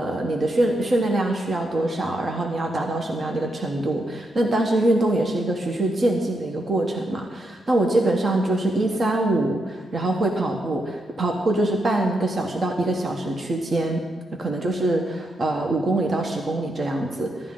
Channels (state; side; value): normal; both; correlation 0.81